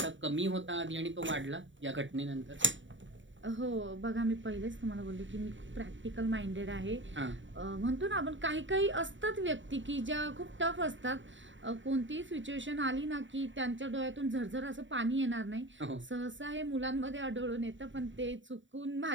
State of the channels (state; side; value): late; left; 0.55 ms